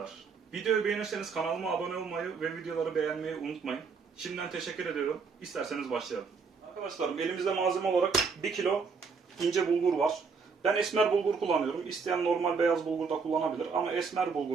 Videoyu beğenirseniz kanalıma abone olmayı ve videoları beğenmeyi unutmayın. Şimdiden teşekkür ediyorum. İsterseniz başlayalım. Arkadaşlarım elimizde malzeme olarak 1 kilo ince bulgur var. Ben esmer bulgur kullanıyorum. İsteyen normal beyaz bulgur da kullanabilir ama esmer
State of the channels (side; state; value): left; quieter; 5.2 dB